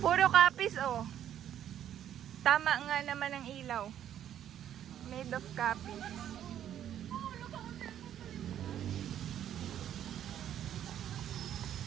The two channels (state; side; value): quieter; left; 10.5 dB